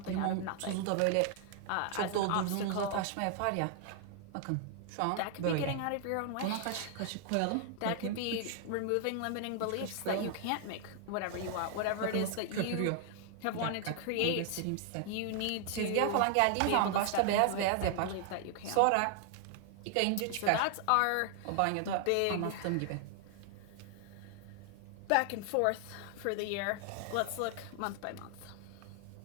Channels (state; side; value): different; both; correlation 0.00